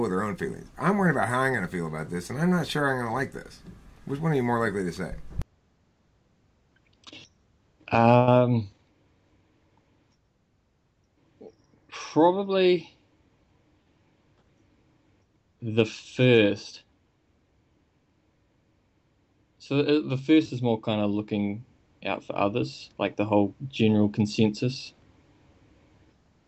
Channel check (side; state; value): both; identical; correlation 1.00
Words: with their own feelings. I'm worried about how I'm going to feel about this, and I'm not sure I'm going to like this. Which one are you more likely to say? Probably the first. So the first is more kind of looking out for others, like the whole general consensus.